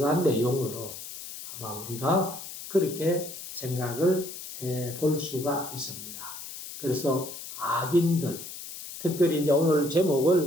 내용으로 아마 우리가 그렇게 생각을 해 볼 수가 있습니다. 그래서 악인들, 특별히 이제 오늘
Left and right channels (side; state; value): left; noise; hiss, 11 dB below the sound